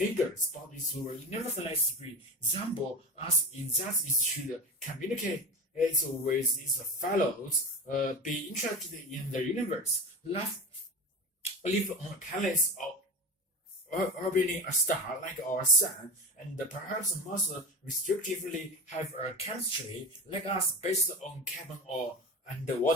but it will nevertheless resemble us in that it should communicate with its fellows, be interested in the universe, live on a planet orbiting a star like our Sun, and perhaps most restrictively have a chemistry like us based on carbon or and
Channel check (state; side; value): normal; both; correlation 0.28